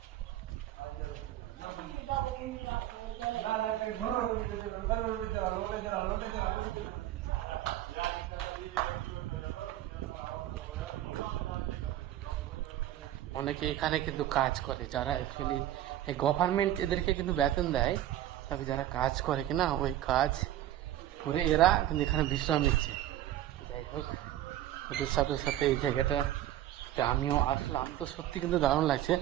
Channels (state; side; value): quieter; left; 13.1 dB